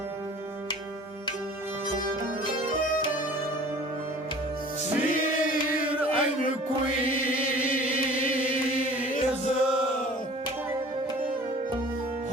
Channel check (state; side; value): normal; both; correlation 0.46